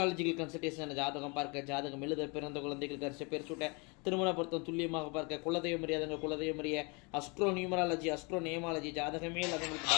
கன்சல்டேஷன் ஜாதகம் பார்க்க, ஜாதகம் எழுத, பிறந்த குழந்தைகள் கரிசை பேர் சூட்ட, திருமண பொருத்தம் துல்லியமாக பார்க்க, குலதெய்வம் அறியாதவங்க குலதெய்வம் அறிய, அஸ்ட்ரோ நியூமராலஜி, அஸ்ட்ரோ நேமாலஜி, ஜாதகமே அதுங்களுக்கு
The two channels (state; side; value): quieter; right; 30.8 dB